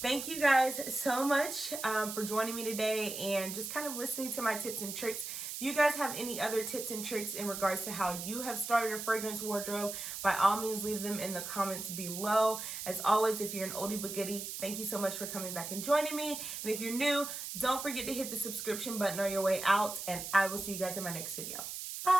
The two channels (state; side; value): noise; right; hiss, 6 dB below the sound